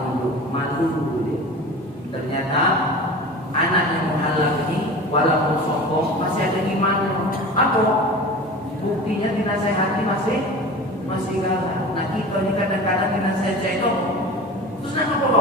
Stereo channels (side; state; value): both; normal; correlation 0.35